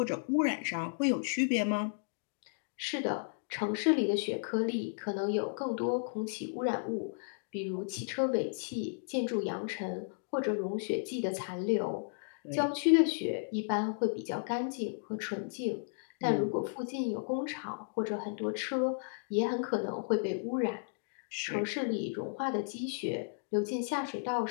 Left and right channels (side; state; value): right; silent; digital silence